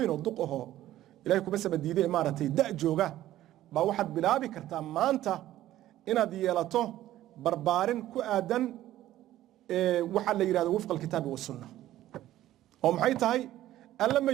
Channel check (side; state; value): left; quieter; 13.9 dB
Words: الدقه إلهكم بس بديده إمارتي دع جوجا بواحد بلابي كرتا ما أنت إن ديالته بربارين كأدن waxa la yiraahdo wafqa alkitaab wa sunnah oo maxay tahay alla ma